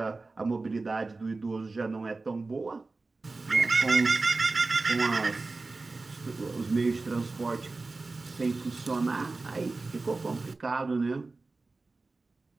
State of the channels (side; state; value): left; quieter; 3.6 dB